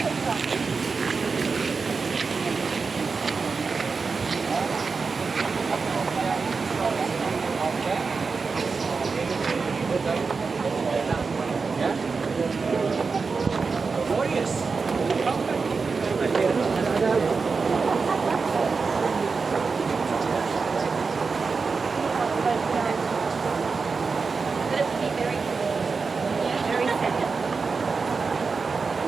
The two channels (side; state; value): left; quieter; 4.7 dB